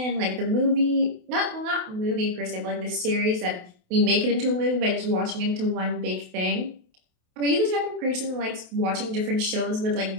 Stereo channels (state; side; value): late; left; 28 ms